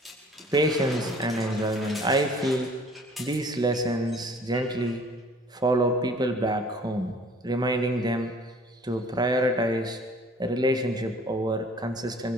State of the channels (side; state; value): both; normal; correlation 0.52